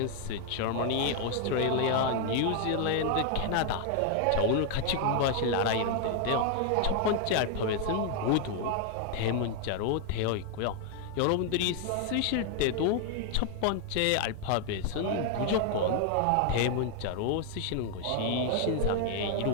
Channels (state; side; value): different; both; correlation 0.00